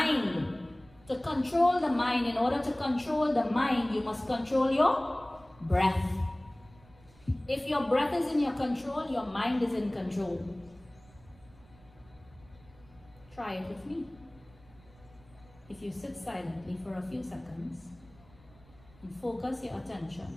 to control the mind, in order to control the mind, you must control your breath. If your breath is in your control, your mind is in control. Try it with me. If you sit silently for a few seconds and focus your attention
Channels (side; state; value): right; noise; rumble, 26 dB below the sound